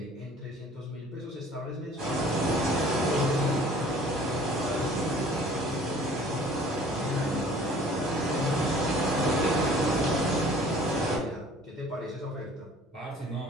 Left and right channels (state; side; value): normal; both; correlation 0.51